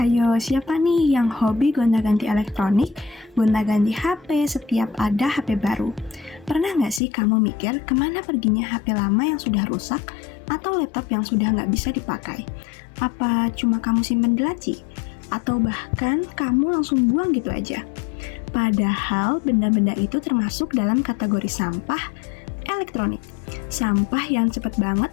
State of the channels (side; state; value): right; drops out; at 7.0 s